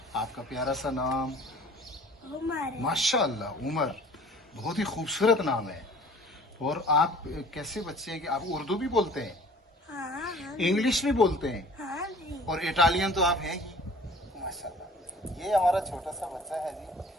आपका प्यारा सा नाम? उमर है। माशाअल्लाह, उमर बहुत ही खूबसूरत नाम है। और आप कैसे बच्चे हैं कि आप उर्दू भी बोलते हैं, हाँ हाँ इंग्लिश भी बोलते हैं हाँ जी। और इटालियन तो आप हैं ही माशाल्लाह। ये हमारा छोटा सा बच्चा है जी,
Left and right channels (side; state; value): both; normal; correlation 0.49